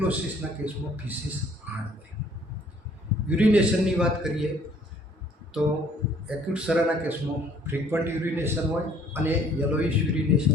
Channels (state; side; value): normal; both; correlation 0.58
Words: કેસમાં ફિસિસ હાર્ડ હોય. યુરિનેશનની વાત કરીએ તો એક્યુટ સરાના કેસમાં ફ્રીક્વન્ટ યુરિનેશન હોય અને યલોઇશ યુરિનેશન